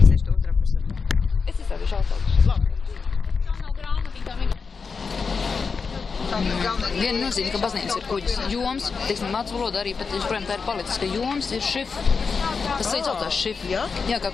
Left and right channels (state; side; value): quieter; right; 5.1 dB